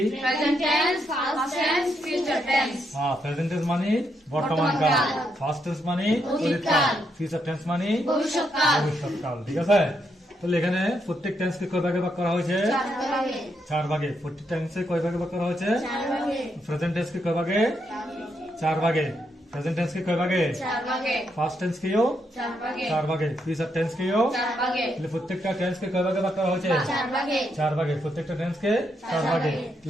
Present tense, past tense, future tense. Present tense মানে বর্তমান কাল, পাস্ট টেন্স মানে অতীতকাল, ফিউচার টেন্স মানে ভবিষ্যৎকাল। ভবিষ্যৎকাল। ঠিক আছে, তাহলে এখানে প্রত্যেক টেন্সকে কয় ভাগে ভাগ করা হয়েছে? চার ভাগে। প্রত্যেক টেন্সে কয় ভাগে ভাগ করা হয়েছে? প্রেজেন্ট টেন্সকে কয় ভাগে? চার ভাগে। প্রেজেন্ট টেন্সকে কয় ভাগে? পাস্ট টেন্সকেও চার ভাগে, ফিউচার টেন্সকেও। তাহলে প্রত্যেকটা টেন্সকে কয় ভাগে ভাগ করা হয়েছে? চার ভাগে। প্রত্যেকটা টেন্সকে চার ভাগে।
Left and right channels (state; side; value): normal; both; correlation 0.79